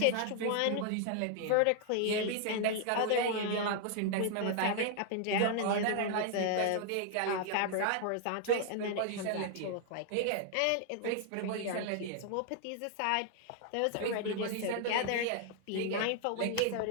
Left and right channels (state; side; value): different; both; correlation 0.00